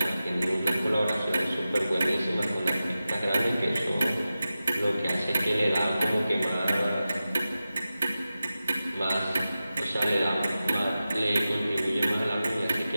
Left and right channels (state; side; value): inverted; both; correlation -0.94